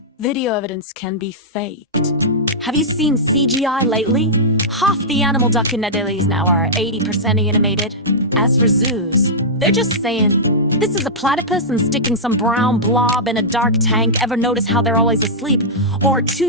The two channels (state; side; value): normal; both; correlation -0.11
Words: Video evidence can be faked. Have you seen CGI lately? Half the animal documentaries now are 80% animated. As for zoos, they're just saying, this is a platypus and sticking some brown blob in a dark tank. Ever notice how they're always asleep? Or